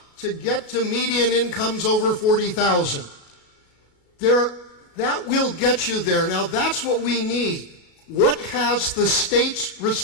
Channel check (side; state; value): right; late; 35 ms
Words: to get to median incomes over $40,000. That will get you there. Now that's what we need. What has the state's